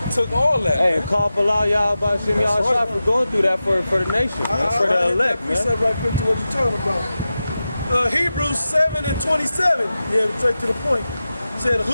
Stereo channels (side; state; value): both; inverted; correlation -0.93